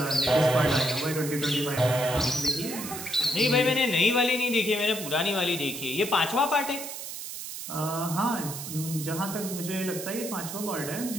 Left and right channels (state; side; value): noise; right; hiss, 8 dB below the sound